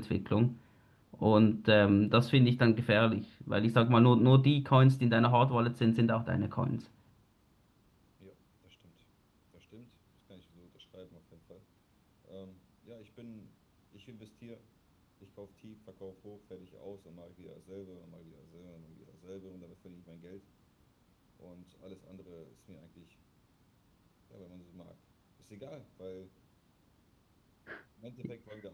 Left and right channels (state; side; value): identical; both; correlation 1.00